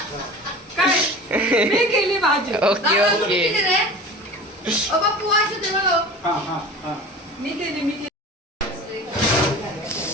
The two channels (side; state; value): both; normal; correlation 0.37